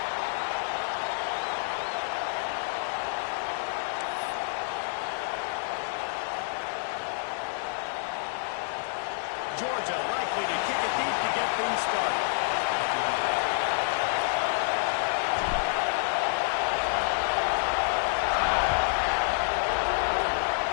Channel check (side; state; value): right; silent; digital silence